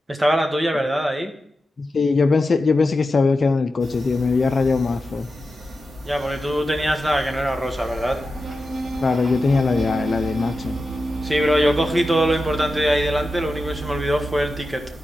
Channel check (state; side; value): normal; both; correlation 0.91